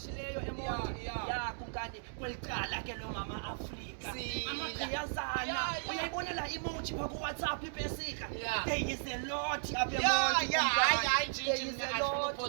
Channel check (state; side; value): silent; left; digital silence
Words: eMonti ya kumkani kwelicala ke lo mama Afrika amagqiyazana uyayibona la emoji pha ku WhatsApp ipesika there is a lot apha eMonti hayi njinji